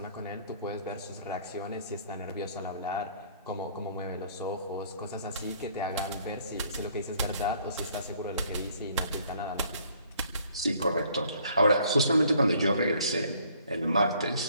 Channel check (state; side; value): inverted; both; correlation -0.61